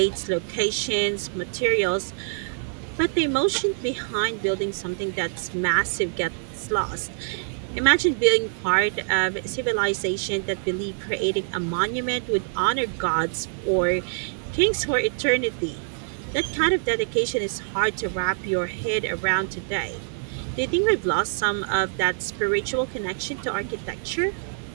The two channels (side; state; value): left; silent; 62 dB below the other